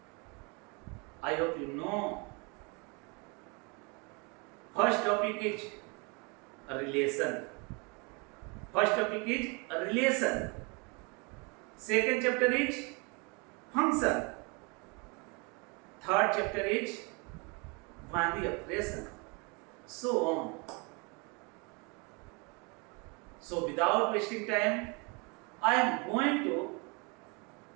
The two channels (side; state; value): left; quieter; 30.9 dB